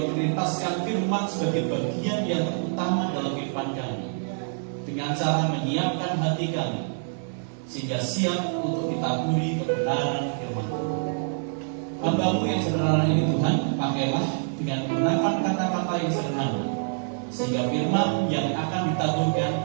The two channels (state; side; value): silent; left; digital silence